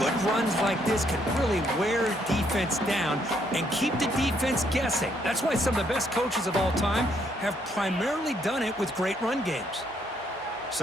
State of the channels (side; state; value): both; normal; correlation 0.71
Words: runs like this can really wear defense down and keep the defense guessing. That's why some of the best coaches of all time have primarily done it with great run games.